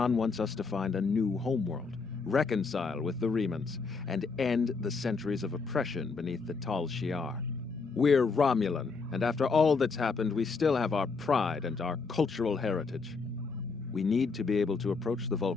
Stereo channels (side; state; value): right; quieter; 4.6 dB